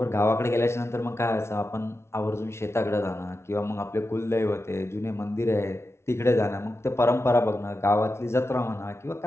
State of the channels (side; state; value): right; late; 0.13 ms